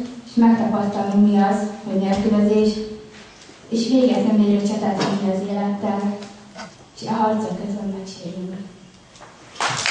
és megtapasztalnunk, mi az, hogy nélkülözés, és véget nem érő csatát vinni az élettel, és a harcok közben megsérülünk.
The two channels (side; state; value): both; identical; correlation 1.00